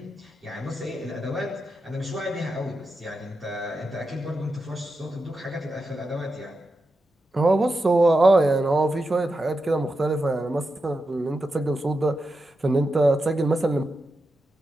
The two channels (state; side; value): normal; both; correlation 0.88